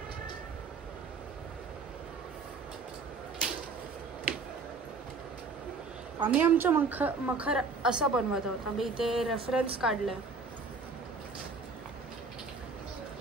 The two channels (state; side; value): quieter; left; 4.3 dB